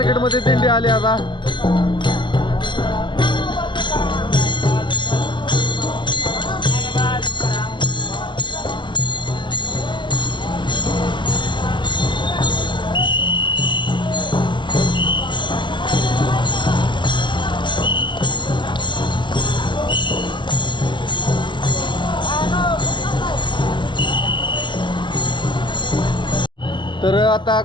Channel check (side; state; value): right; late; 0.23 ms